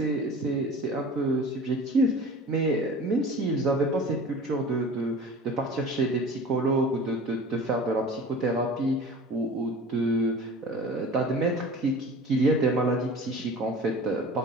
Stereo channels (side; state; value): both; normal; correlation 0.39